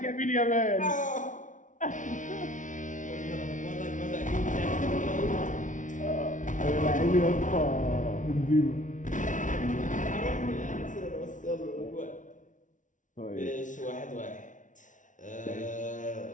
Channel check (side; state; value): right; late; 0.37 ms